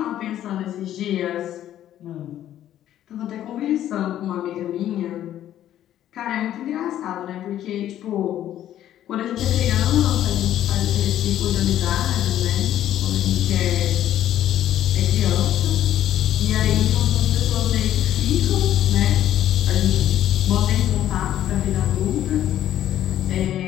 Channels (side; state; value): right; quieter; 11.9 dB